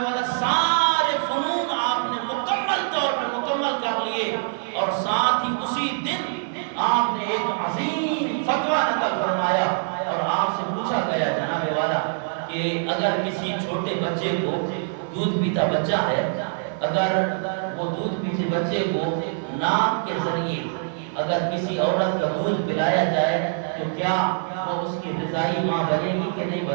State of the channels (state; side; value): silent; left; 57 dB below the other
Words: والا سارے فنون آپ نے مکمل طور پہ مکمل کر لیے، اور ساتھ ہی اسی دن آپ نے ایک عظیم فتویٰ نقل فرمایا، اور آپ سے پوچھا گیا جناب والا کہ اگر کسی چھوٹے بچے کو، دودھ پیتا بچہ ہے، اگر وہ دودھ پیتے بچے کو ناک کے ذریعے اگر کسی عورت کا دودھ پلایا جائے تو کیا وہ اس کی رضائی ماں بنے گی کہ نہیں